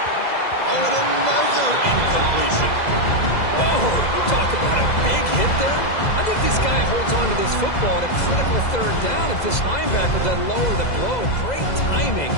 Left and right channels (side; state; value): right; late; 2.0 ms